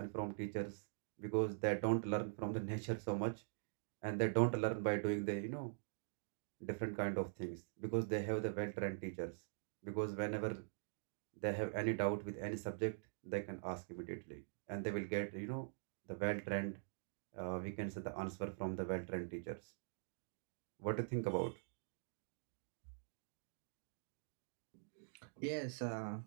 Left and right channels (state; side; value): silent; left; digital silence